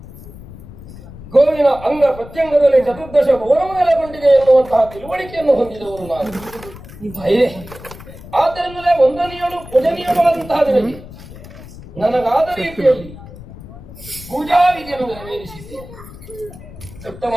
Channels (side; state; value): left; noise; rumble, 16 dB below the sound